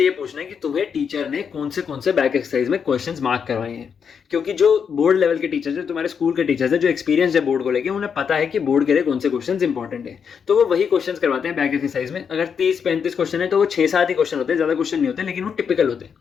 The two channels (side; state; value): right; quieter; 6.8 dB